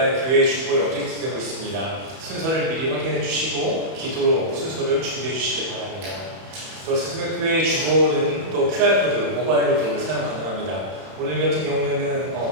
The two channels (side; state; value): left; late; 31 ms